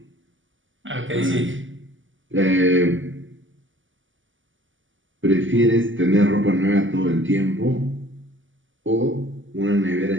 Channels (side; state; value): left; late; 0.56 ms